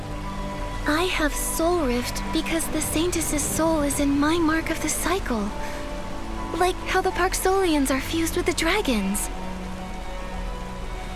I have Soulrift because the Saintess's soul is in my mark of the cycle. Like how the Parksolians are fused with the dragons.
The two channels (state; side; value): identical; both; correlation 1.00